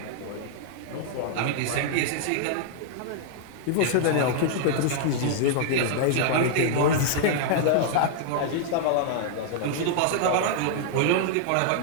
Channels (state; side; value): different; both; correlation -0.01